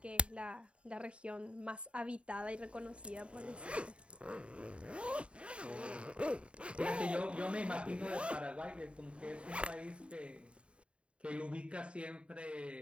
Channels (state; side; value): late; left; 0.058 ms